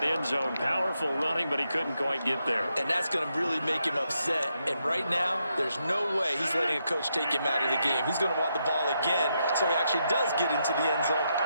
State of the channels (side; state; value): both; inverted; correlation -0.81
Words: end zone. Powerful running, but he couldn't quite get there. And that's going to really make him upset. And right now, there's no way he's letting a coach take him out of the game. He's going to want the ball again, so he actually does get into the end zone,